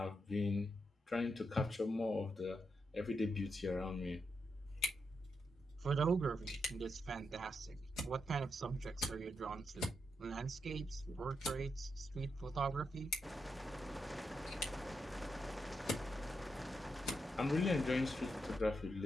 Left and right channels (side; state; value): both; normal; correlation 0.83